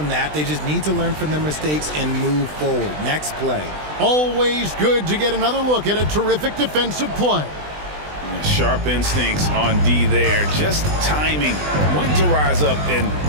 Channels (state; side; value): late; left; 20 ms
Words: that. They just need to learn from their mistakes and move forward. Next play. Always good to get another look at a terrific defensive play. Sharp instincts on D there. Just timing. When to rise up and